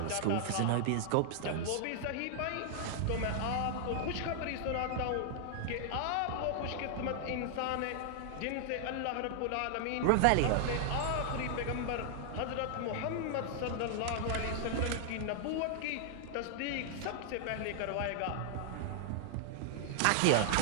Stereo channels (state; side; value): different; both; correlation 0.00